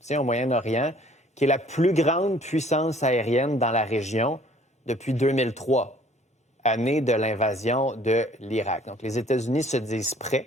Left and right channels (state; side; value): normal; both; correlation 0.56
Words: au Moyen-Orient, qui est la plus grande puissance aérienne dans la région depuis 2003, année de l'invasion de l'Irak. Donc, les États-Unis se disent prêts